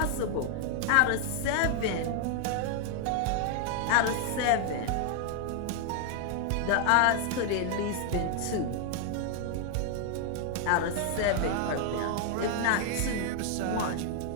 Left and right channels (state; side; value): different; both; correlation 0.00